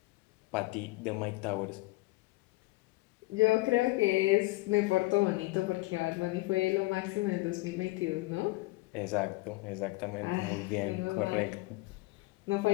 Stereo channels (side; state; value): right; quieter; 21.7 dB